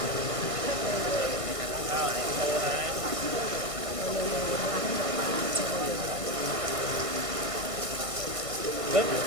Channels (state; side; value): late; left; 1.5 ms